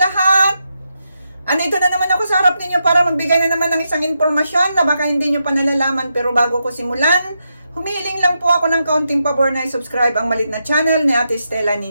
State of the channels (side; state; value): both; inverted; correlation -0.84